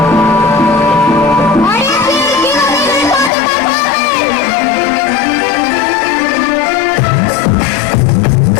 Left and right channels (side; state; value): right; drops out; at 3.3 s